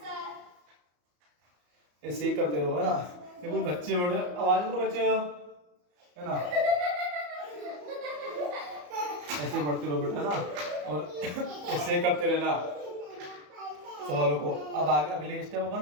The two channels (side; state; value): left; late; 34 ms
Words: ऐसे ही करते रहो, है ना। ये कोई बच्चे बैठे, आवाज करो बच्चे, है ना। ऐसे बढ़ते रहो बेटा ना, और ऐसे करते रहना सवालों को। अब आगे अगले स्टेप